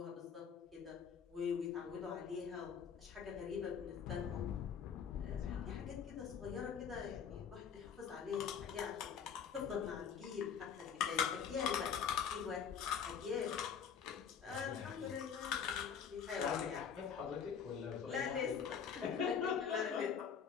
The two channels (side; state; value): right; quieter; 7.3 dB